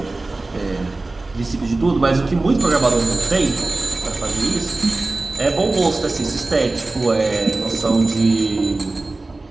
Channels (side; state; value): left; quieter; 3.2 dB